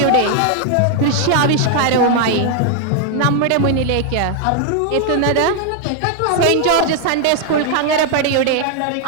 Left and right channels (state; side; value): different; both; correlation 0.00